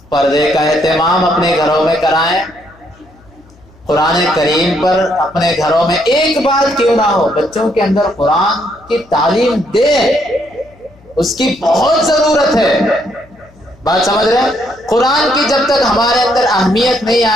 پردے کا اہتمام اپنے گھروں میں کرائیں، قرآن کریم پر اپنے گھروں میں ایک بات کیوں نہ ہو بچوں کے اندر قرآن کی تعلیم دیں، اس کی بہت ضرورت ہے۔ بات سمجھ رہے ہیں؟ قرآن کی جب تک ہمارے اندر اہمیت نہیں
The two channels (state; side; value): noise; left; hum, 27 dB below the sound